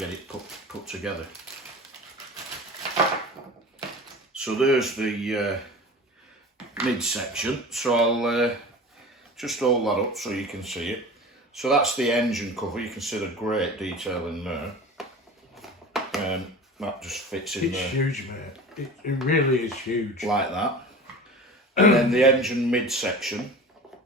it put together. So there's the midsection. So I'll just hold that up so you can see it. So that's the engine cover. You can see the great detail in there. That just fits in there. It's huge, mate. It really is huge. Like that. And then the engine midsection,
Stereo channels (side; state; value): both; normal; correlation 0.36